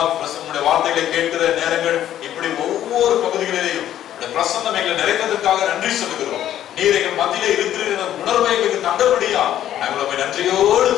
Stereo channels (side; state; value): right; quieter; 11.6 dB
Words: பிரசன்னுடைய வார்த்தைகளை கேட்கிற நேரங்கள், இப்படி ஒவ்வொரு பகுதிகளிலேயும் பிரசன்னம் எங்களை நிறைந்ததற்காக நன்றி சொல்லுகிறோம். நீர் எங்கள் மத்தியிலே இருக்கிற உணர்வை எங்களுக்கு தந்தபடியா நாங்கள் உண்மை நன்றியோடு